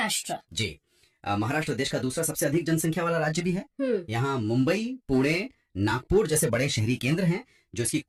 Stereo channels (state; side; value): identical; both; correlation 1.00